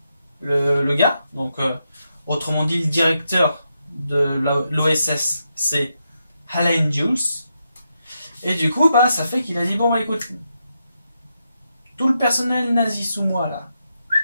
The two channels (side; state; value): both; inverted; correlation -0.84